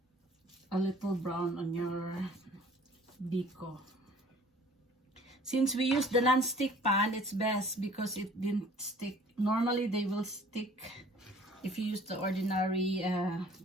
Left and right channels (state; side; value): normal; both; correlation 0.52